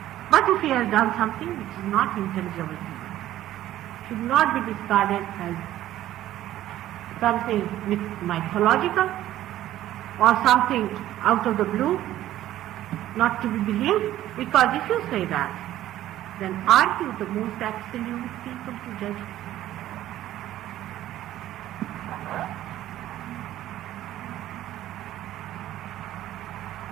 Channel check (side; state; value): left; quieter; 13.6 dB